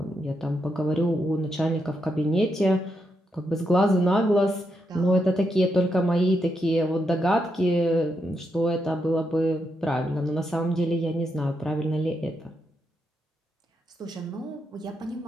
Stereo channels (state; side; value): normal; both; correlation 0.82